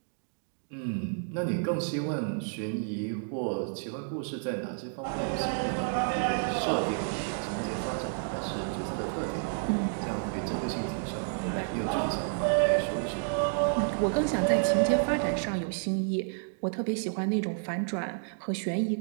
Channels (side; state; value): left; silent; digital silence